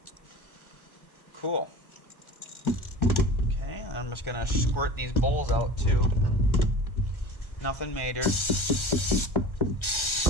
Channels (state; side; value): late; right; 1.4 ms